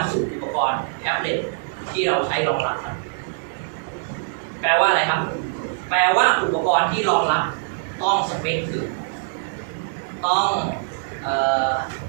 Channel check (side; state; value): left; silent; digital silence